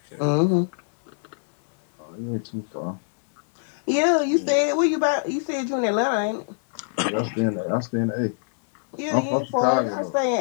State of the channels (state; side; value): silent; right; digital silence